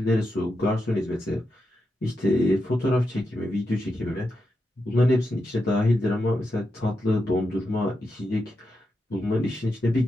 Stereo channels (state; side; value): normal; both; correlation 0.86